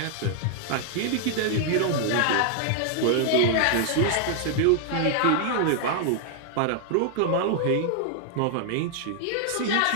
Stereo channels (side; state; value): both; different; correlation 0.00